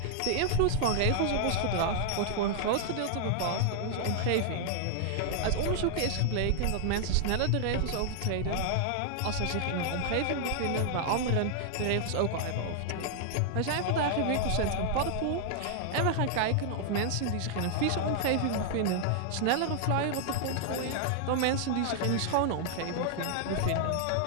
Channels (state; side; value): different; both; correlation -0.01